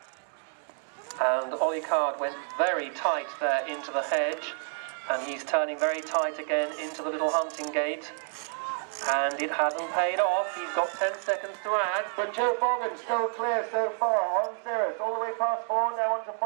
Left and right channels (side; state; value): left; silent; 55 dB below the other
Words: And Ollie Card went very tight there into the hedge, and he's turning very tight again into the little hunting gate. And it hasn't paid off. He's got 10 seconds to add. But Joe Bogan still clear so far on Cirrus. All the way past 4, now on to